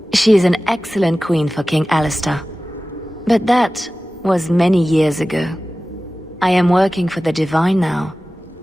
She is an excellent queen for King Alistair. But that was many years ago. I am working for the Divine now,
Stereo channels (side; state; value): both; normal; correlation 0.96